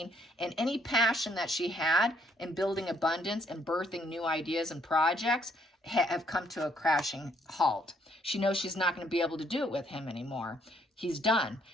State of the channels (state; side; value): normal; both; correlation 0.68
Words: and any passion that she had in building abundance and birthing new ideas and projects have come to a crashing halt. She knows she's not going to be able to do it with him anymore. He's done.